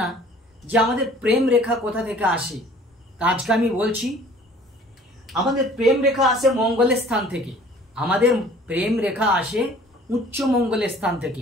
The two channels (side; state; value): both; normal; correlation 0.51